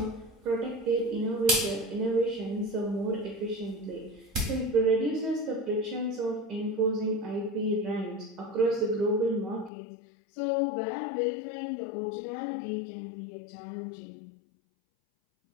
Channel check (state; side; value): drops out; right; at 9.7 s